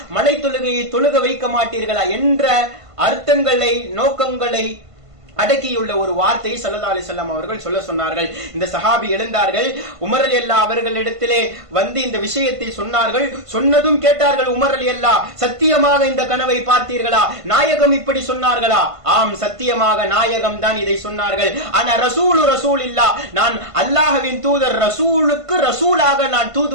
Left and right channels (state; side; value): late; left; 1.5 ms